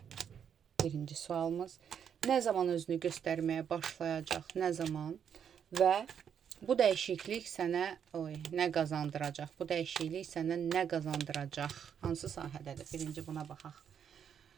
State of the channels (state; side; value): quieter; left; 8.1 dB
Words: Birinci sualımız. Nə zaman özünü göstərməyə başlayacaq? Nə zaman? Və bu dəyişiklik sənə nə qazandıracaq? Bu dəyişiklik sənə nə qazandıracaq? Hansı sahədədir? Birinci buna baxaq.